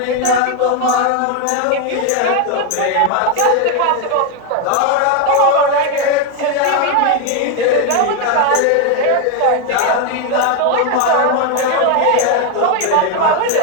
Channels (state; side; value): different; both; correlation 0.01